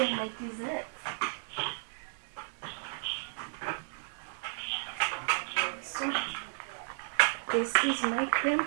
my dessert. So this is my cream.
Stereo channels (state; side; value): silent; left; 56 dB below the other